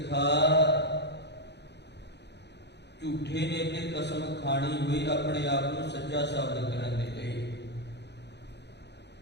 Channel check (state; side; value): late; right; 0.50 ms